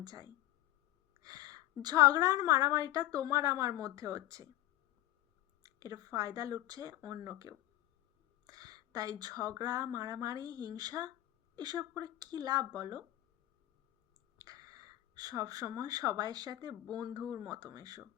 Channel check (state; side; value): quieter; right; 15.4 dB